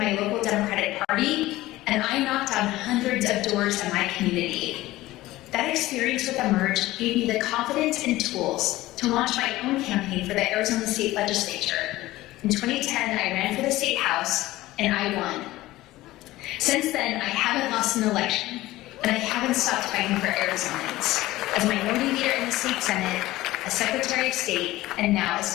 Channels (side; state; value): right; quieter; 17.2 dB